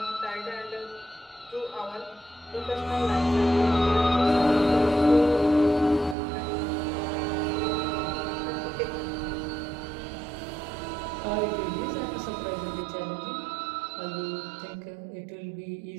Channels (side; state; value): left; drops out; at 6.2 s